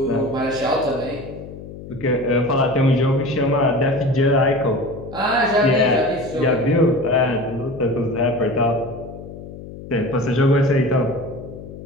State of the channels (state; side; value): noise; left; hum, 13 dB below the sound